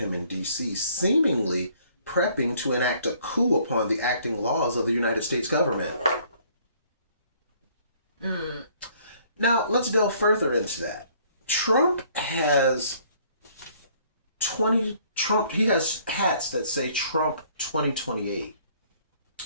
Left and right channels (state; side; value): inverted; both; correlation -0.61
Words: in D.C., seemingly prepping to enact a coup upon the acting laws of the United States government. Now, let's delve further into that. Trump has he has hats that say Trump 2028.